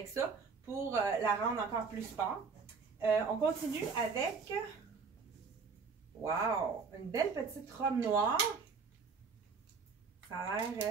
ça pour la rendre encore plus sport. On continue avec, wow, une belle petite robe noire. Ça a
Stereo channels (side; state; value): left; quieter; 5.2 dB